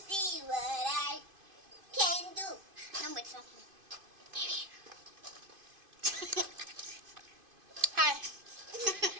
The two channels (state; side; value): late; left; 2.5 ms